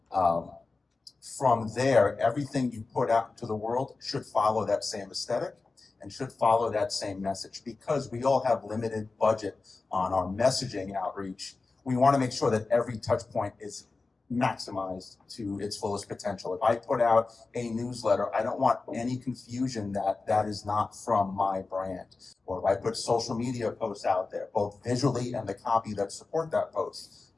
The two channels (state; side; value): quieter; right; 3.8 dB